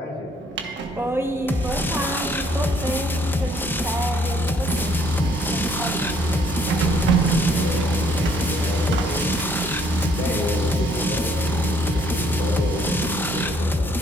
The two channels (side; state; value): both; normal; correlation 0.65